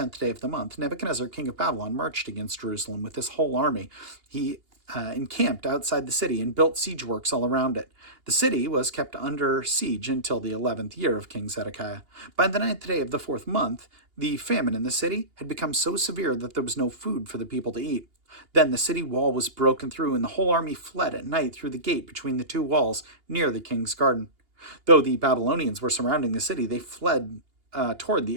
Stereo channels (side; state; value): left; late; 2.8 ms